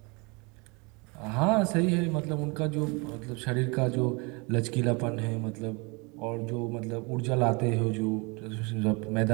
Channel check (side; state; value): left; quieter; 29.2 dB